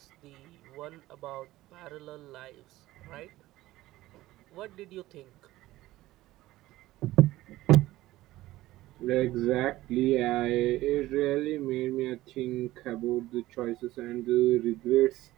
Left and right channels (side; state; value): left; quieter; 16.7 dB